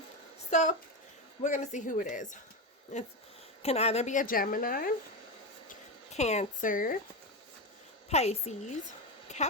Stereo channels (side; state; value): both; normal; correlation 0.15